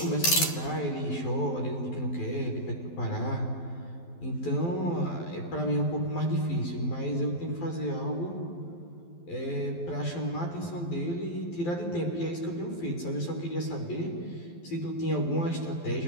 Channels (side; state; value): right; late; 12 ms